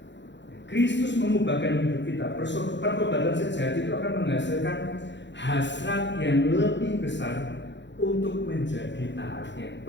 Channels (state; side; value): late; right; 0.52 ms